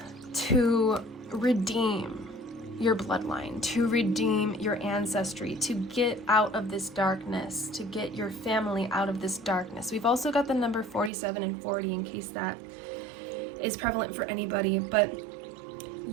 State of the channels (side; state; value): left; drops out; at 11.1 s